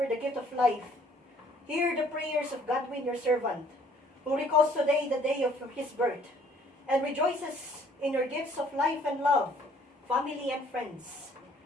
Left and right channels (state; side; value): normal; both; correlation 0.60